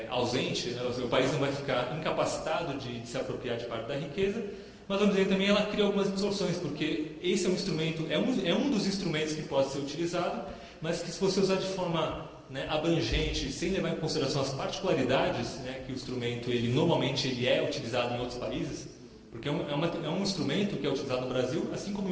ausente, né, o país não vai ficar incapacitado de se apropriar de parte da riqueza, mas vamos dizer também ela cria algumas distorções, porque esse é um instrumento, é um dos instrumentos que pode ser utilizado, mas que se você usar de forma, né, abrangente, sem levar em consideração as particularidades, né, que o instrumento normalmente é utilizado em outros países, porque é um instrumento que é utilizado no Brasil, assim como em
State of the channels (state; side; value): identical; both; correlation 1.00